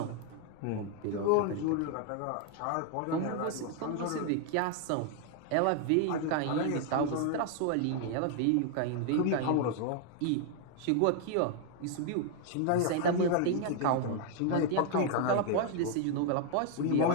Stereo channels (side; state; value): both; different; correlation 0.00